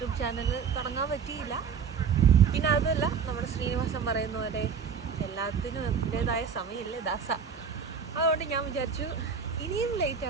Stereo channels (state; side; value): quieter; left; 6.3 dB